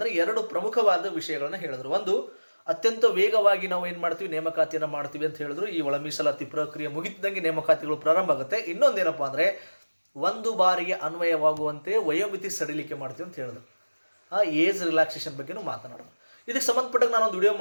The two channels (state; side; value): inverted; both; correlation -1.00